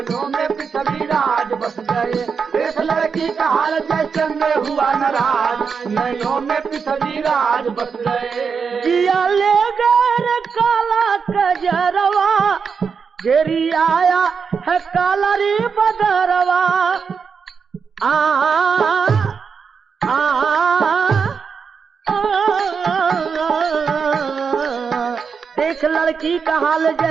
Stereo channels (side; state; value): left; quieter; 5.9 dB